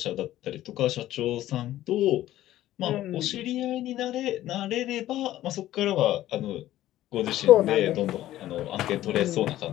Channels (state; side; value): quieter; right; 14.1 dB